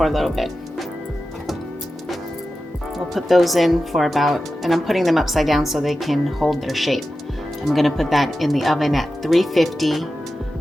a little bit. We'll put those in for about, and I'm putting them upside down so they can hold their shape. I'm gonna put that in the oven at 350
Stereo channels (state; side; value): normal; both; correlation 0.93